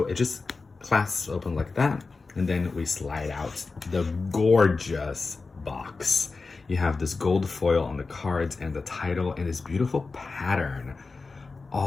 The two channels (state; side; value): quieter; right; 4.1 dB